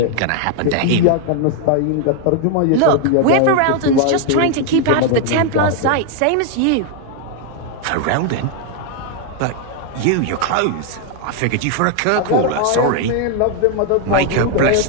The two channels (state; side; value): different; both; correlation 0.00